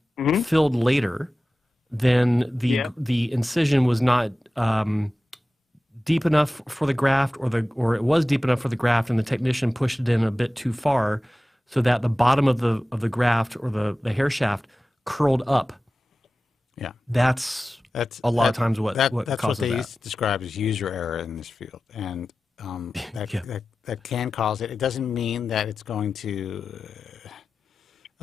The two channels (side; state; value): both; normal; correlation 0.95